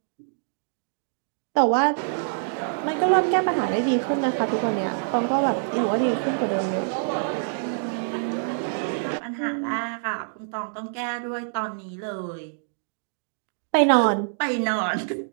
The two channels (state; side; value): silent; left; digital silence